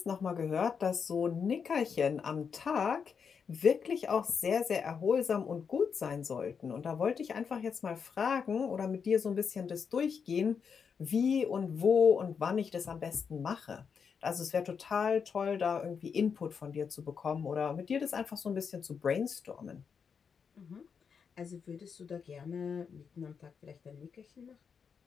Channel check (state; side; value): quieter; right; 6.3 dB